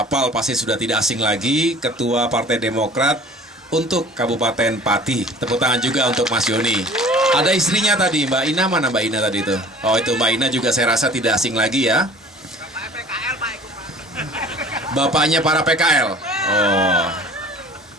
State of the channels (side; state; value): both; normal; correlation 0.47